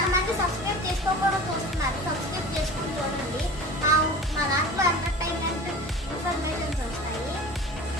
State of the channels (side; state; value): both; normal; correlation 0.37